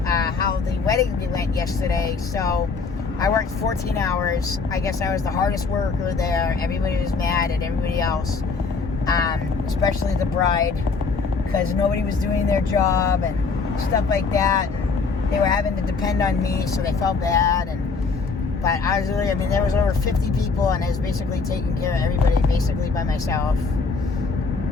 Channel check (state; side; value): quieter; right; 4.6 dB